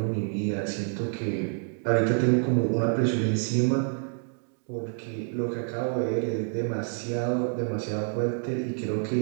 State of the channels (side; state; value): left; silent; 55 dB below the other